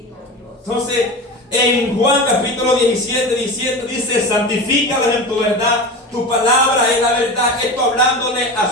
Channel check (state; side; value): normal; both; correlation 0.28